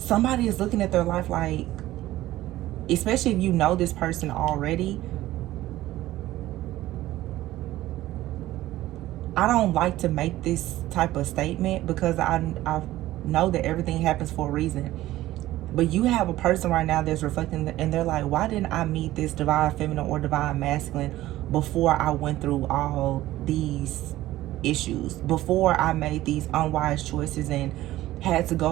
is looking at their life like, especially if you know this person already, I don't like to make this type of statement because I know that everything happens for a reason. But you have a person right now that's reflecting, and they're like, why didn't I meet this divine feminine or divine masculine before I went through all these issues, before I made these unwise choices and had to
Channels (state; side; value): quieter; left; 15.6 dB